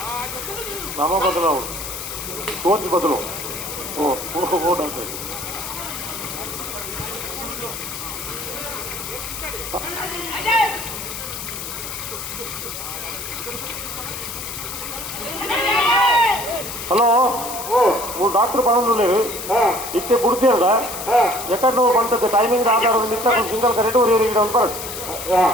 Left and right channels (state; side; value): noise; left; hiss, 8 dB below the sound